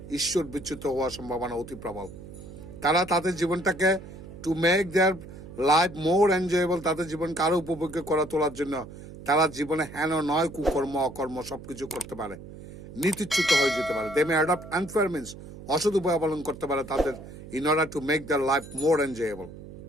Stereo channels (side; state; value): right; noise; hum, 15 dB below the sound